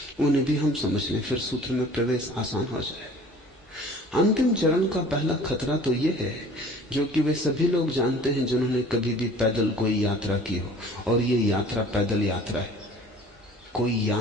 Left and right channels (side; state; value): both; normal; correlation 0.48